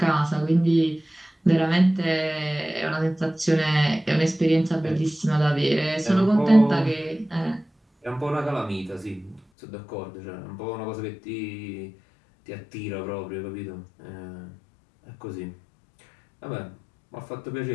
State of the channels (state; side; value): drops out; right; at 9.4 s